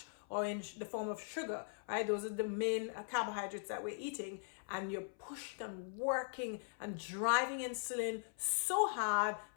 or in the form of sugar, right? Those are the main carbohydrates that we're eating, and you're pushing and working and driving insulin so hard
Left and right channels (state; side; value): silent; right; 51 dB below the other